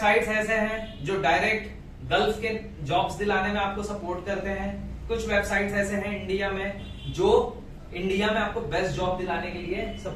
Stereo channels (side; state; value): both; identical; correlation 1.00